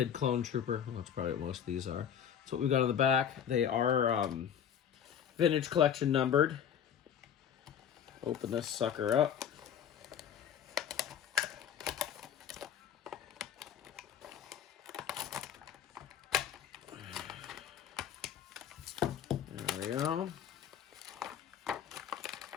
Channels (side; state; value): right; quieter; 8.8 dB